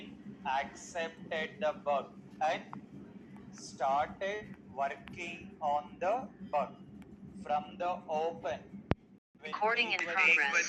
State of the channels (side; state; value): both; identical; correlation 1.00